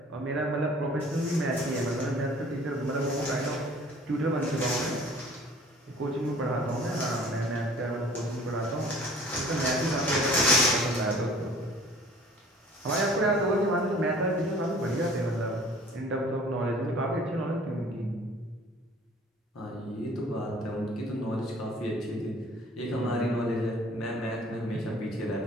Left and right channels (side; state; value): both; normal; correlation 0.51